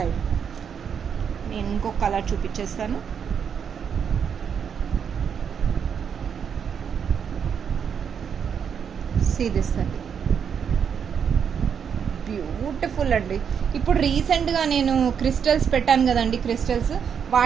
నేను ఇంకొక కలర్ చూపించేస్తాను. సీ దిస్ అండి, బ్యూటిఫుల్ అండి. ఇప్పుడు రీసెంట్గా నేను క్రిస్టల్స్ పెట్టాను కదండి, క్రిస్టల్స్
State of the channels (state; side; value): quieter; left; 7.4 dB